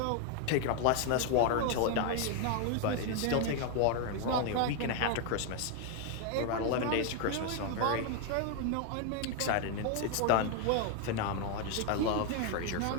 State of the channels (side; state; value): both; different; correlation 0.00